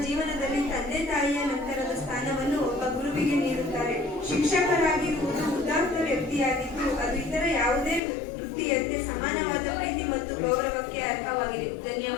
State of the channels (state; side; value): drops out; right; at 8.0 s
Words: ಜೀವನದಲ್ಲಿ ತಂದೆ ತಾಯಿಯ ನಂತರದ ಸ್ಥಾನವನ್ನು ಒಬ್ಬ ಗುರುವಿಗೆ ನೀಡುತ್ತಾರೆ. ಶಿಕ್ಷಕರಾಗಿರುವುದು ಉದಾತ್ತ ವ್ಯಕ್ತಿಯಾಗಿದ್ದು ಅದು ಇತರ ಯಾವುದೇ ವೃತ್ತಿಯಂತೆ ಸಮಾನವಾದ ಪ್ರೀತಿ ಮತ್ತು ಗೌರವಕ್ಕೆ ಅರ್ಹವಾಗಿದೆ.